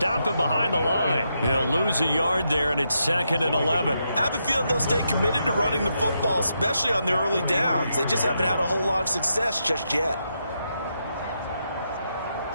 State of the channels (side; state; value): both; inverted; correlation -0.82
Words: him behind the line. He'll lose a yard there, and it's 2nd and 11. I have a feeling they'll stay committed to running the football, especially on their early downs. They just haven't had a whole lot of success just yet.